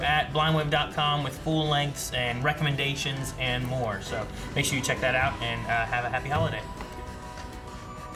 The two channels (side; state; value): both; identical; correlation 1.00